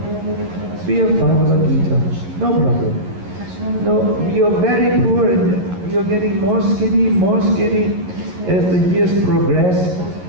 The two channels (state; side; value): late; left; 11 ms